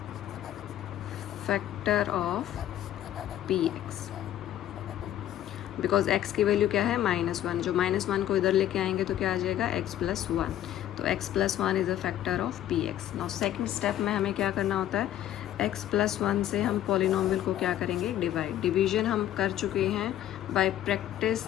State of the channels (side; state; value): right; quieter; 12.1 dB